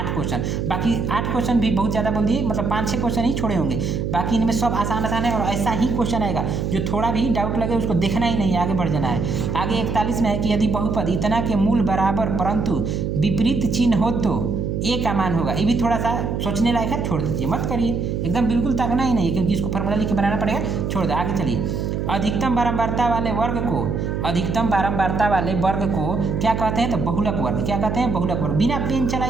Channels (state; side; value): noise; right; hum, 1 dB below the sound